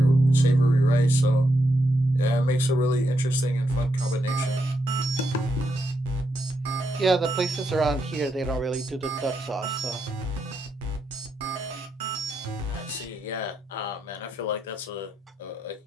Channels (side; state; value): both; normal; correlation 0.81